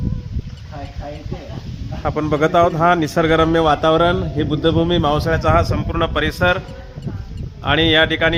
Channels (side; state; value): both; identical; correlation 1.00